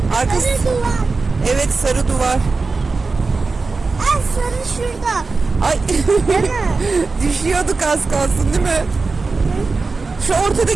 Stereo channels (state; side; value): quieter; left; 4.1 dB